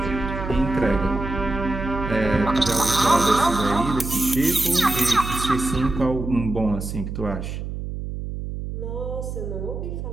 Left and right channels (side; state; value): right; noise; hum, 6 dB below the sound